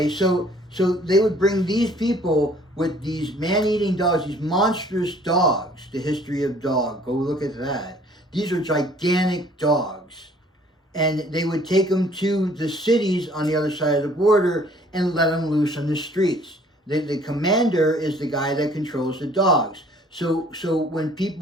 so they would bring these people with these man-eating dogs, these monstrous dogs, the history of dog, go look at that. These are gigantic dogs. And they would take them to the cities on the other side of the border and let them loose on the streets. The commander is the guy that controls the dogs. So when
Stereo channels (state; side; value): normal; both; correlation 0.56